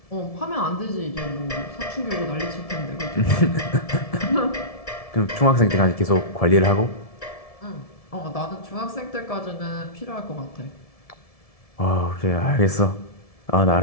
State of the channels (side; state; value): right; late; 1.7 ms